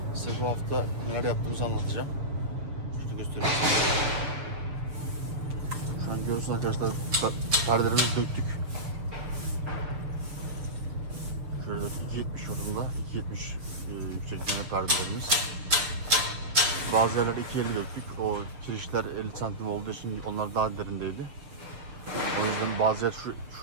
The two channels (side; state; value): left; late; 7.0 ms